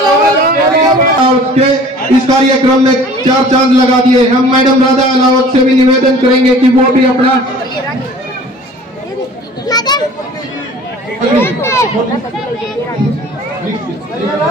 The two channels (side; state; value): both; normal; correlation 0.47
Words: इस कार्यक्रम में 4 चांद लगा दिए। हम मैडम राधा अलावत से भी निवेदन करेंगे कि वो भी अपना